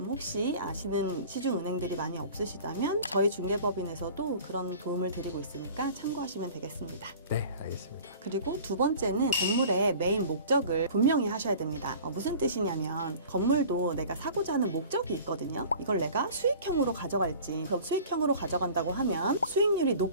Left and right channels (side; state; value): both; inverted; correlation -0.43